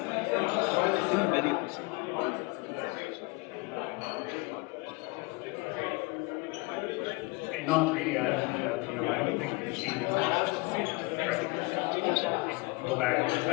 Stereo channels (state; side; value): quieter; right; 26.8 dB